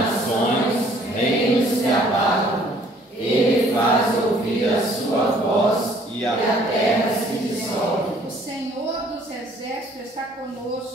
reinos se abalam. Ele faz ouvir a sua voz e a terra se dissolve. O Senhor dos exércitos está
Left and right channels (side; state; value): both; normal; correlation 0.58